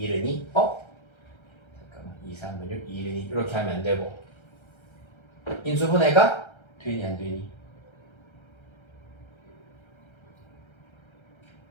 2 잠깐만 2, 3은 6, 2, 1은 2 이렇게 하면 안 되고 인수분해가 되니 안 되니?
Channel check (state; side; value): late; right; 1.3 ms